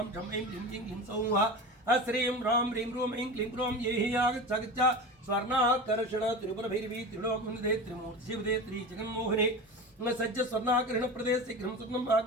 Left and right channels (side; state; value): both; normal; correlation 0.29